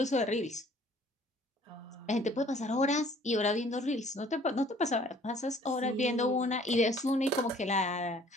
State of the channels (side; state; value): both; normal; correlation 0.55